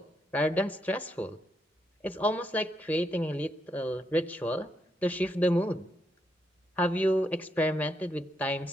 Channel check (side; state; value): both; normal; correlation 0.79